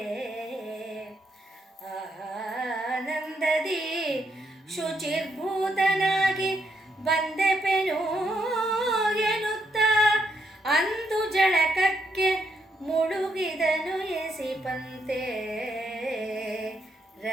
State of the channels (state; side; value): normal; both; correlation 0.77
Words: ಆನಂದದಿ ಶುಚಿರ್ಭೂತನಾಗಿ ಬಂದೆಪೆನು ಎನ್ನುತ್ತ ಅಂದು ಜಳಕಕ್ಕೆ ಮುಳುಗಿದನು ಎಸಿಪಂತೆ